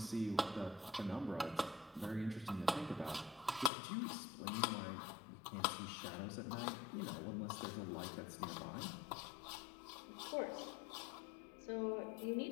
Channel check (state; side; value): drops out; right; at 3.7 s